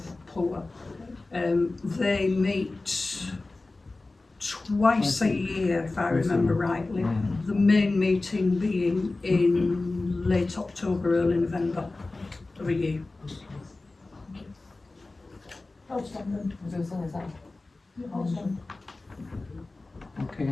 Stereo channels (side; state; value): right; quieter; 3.2 dB